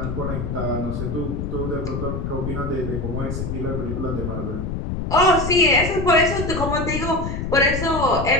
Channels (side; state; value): left; noise; rumble, 4 dB below the sound